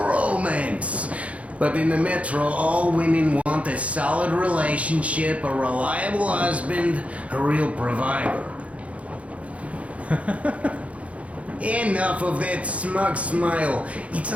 But in the metro, all women want a solid relationship, a reliable husband, a real provider. Enough of that smug smile. It's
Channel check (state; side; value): late; left; 0.065 ms